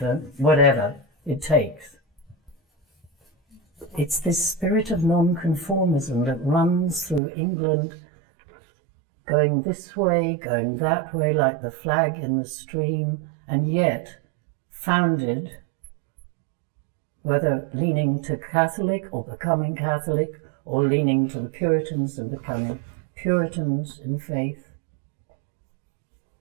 whatever it takes. It's this spirit of nonconformism that runs through England, going this way, going that way, like the flag in the stream, and yet founded, whether leaning to Catholic or becoming Catholic, or leaning to the Puritans and becoming Puritans in faith.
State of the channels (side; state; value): left; drops out; at 7.2 s